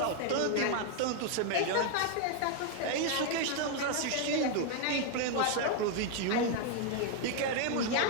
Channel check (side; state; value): both; different; correlation 0.00